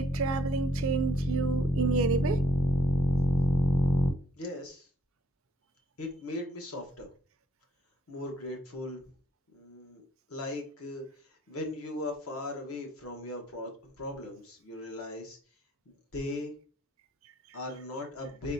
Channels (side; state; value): both; normal; correlation 0.67